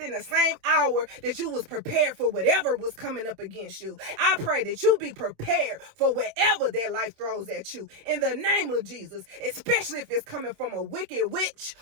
the same hour that you was prepared for whatever was coming up against you. I pray that you be prepared for whatever that life throws at you. In the name of Jesus, especially if it's coming from a wicked witch,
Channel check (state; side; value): late; left; 26 ms